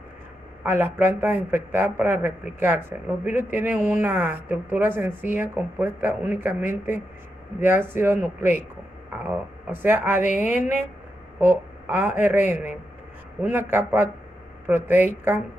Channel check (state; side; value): normal; both; correlation 0.85